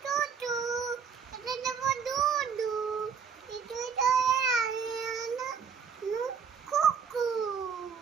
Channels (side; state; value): left; quieter; 6.6 dB